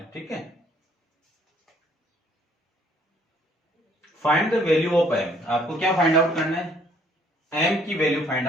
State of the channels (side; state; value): both; normal; correlation 0.62